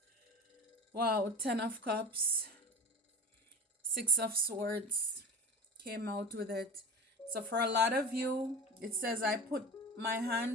Wow, 10 of Cups, 6 of Swords came out with it. So for a lot of you, it says, I put my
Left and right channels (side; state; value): both; normal; correlation 0.33